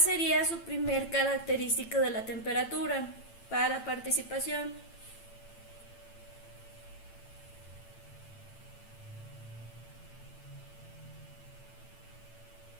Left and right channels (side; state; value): right; late; 8.9 ms